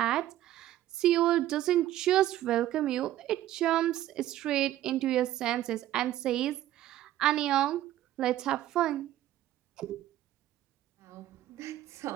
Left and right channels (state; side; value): quieter; left; 13.6 dB